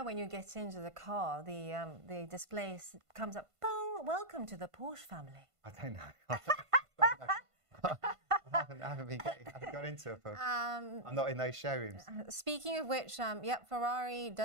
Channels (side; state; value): left; late; 1.5 ms